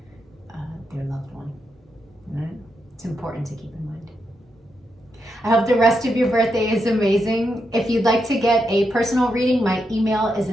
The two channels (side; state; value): both; normal; correlation 0.83